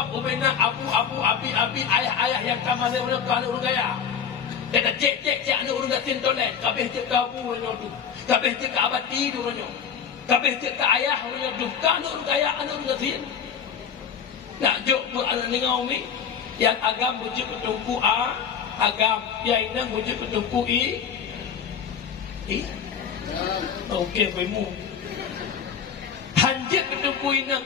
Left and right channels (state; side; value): quieter; right; 7.5 dB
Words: umena abu abi ayah yang kamar dia orang kalau orang gaya. Dia dah cek anak orang gatin toilet, kabeh cek kabu orang tu. Kabeh cek abati tu orang. Kabeh cek ayah orang tu. Kan orang gaya anak orang gatin. Nak jok buat dengan umi yang agam bujuk ketungku A, agam yang inang bujuk ketungku I. Okey, bemu. Hanjat ketungku inang